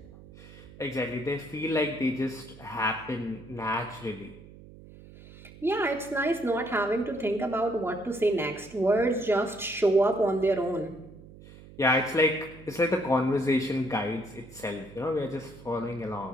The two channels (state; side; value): noise; right; hum, 19 dB below the sound